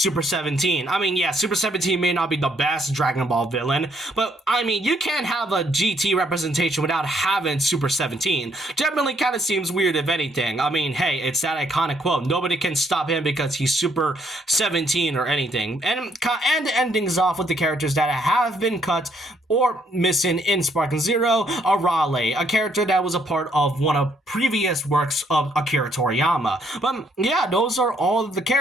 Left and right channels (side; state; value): both; normal; correlation 0.70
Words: 17. I mean, yeah, Super 17 may not be the best Dragon Ball villain, but I mean, you can't have a GT representation without having Super 17. Definitely kind of seems weird, if anything. I mean, hey, it's that iconic quote, nobody can stop him because he's Super 17 or anything. And end things off with the characters that have been cut or missing in Sparking Zero, Arale, a character that was a part of one of previous works of Akira Toriyama. But yeah, those are all of the